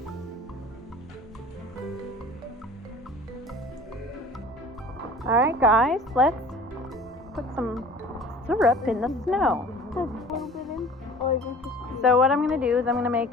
Alright guys, let's put some syrup in the snow. So what I'm going to do is I'm going to make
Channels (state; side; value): normal; both; correlation 0.44